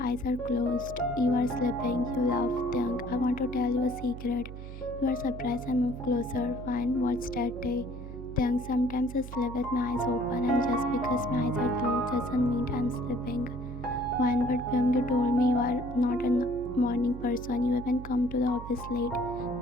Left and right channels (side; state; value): right; noise; hum, 11 dB below the sound